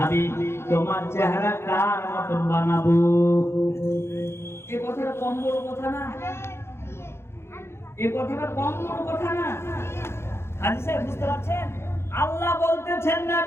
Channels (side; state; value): right; late; 0.12 ms